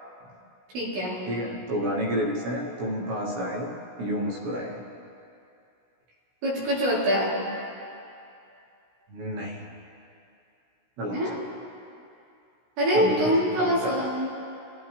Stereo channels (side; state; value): left; late; 16 ms